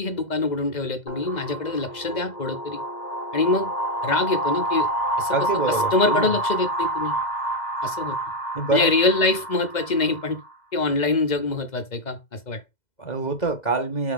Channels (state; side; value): late; right; 2.0 ms